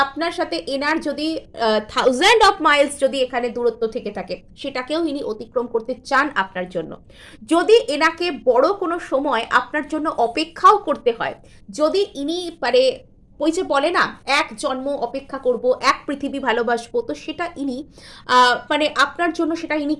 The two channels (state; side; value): identical; both; correlation 1.00